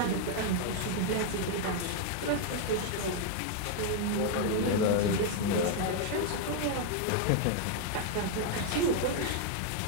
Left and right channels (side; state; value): both; different; correlation 0.00